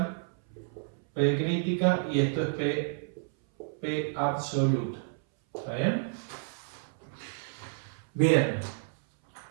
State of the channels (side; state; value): left; silent; 58 dB below the other